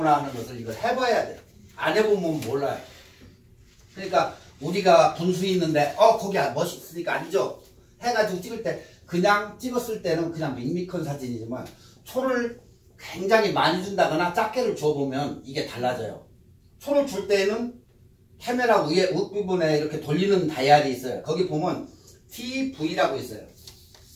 하는 것을 이걸 해봐야 돼. 안 해보면 몰라요. 그러니까 우리가 분수 있는데 거기 멋있으니까 아니죠 해가지고 찍을 때 그냥 찍었을 때는 그냥 밋밋한 사진이지만 초를 굉장히 많이 준다거나 작게를 줘보면 이게 달라져요. 초를 줄 때는 카메라 위에 윗부분에 이렇게 돌리는 다이얼이 있어요. 거기 보면 TV라고 있어요.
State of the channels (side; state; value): both; identical; correlation 1.00